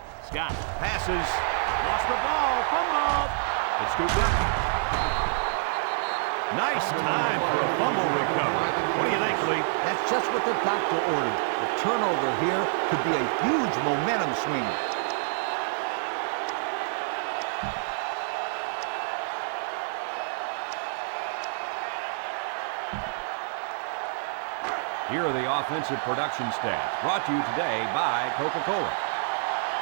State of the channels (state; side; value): silent; left; 60 dB below the other